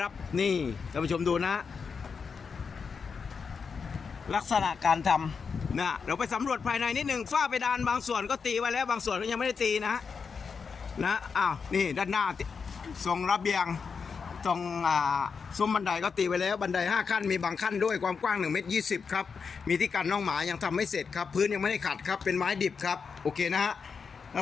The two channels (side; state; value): right; quieter; 5.6 dB